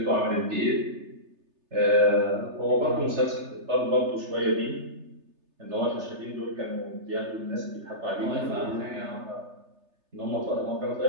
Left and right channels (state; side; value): late; left; 3.3 ms